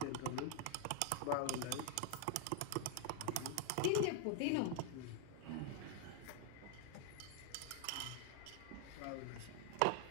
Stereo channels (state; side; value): different; both; correlation 0.00